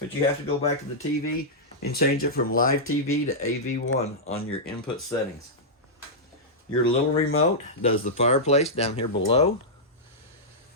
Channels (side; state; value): both; normal; correlation -0.10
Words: you have to go back to the TV and change it from live TV to AV1 on your input settings. Your little remote does the fireplace down here below.